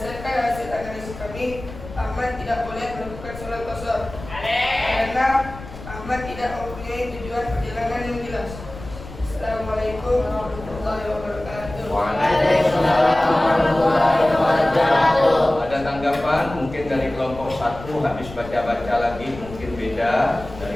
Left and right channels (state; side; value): noise; left; rumble, 14 dB below the sound